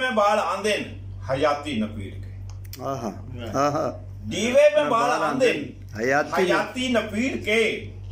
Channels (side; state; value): both; identical; correlation 1.00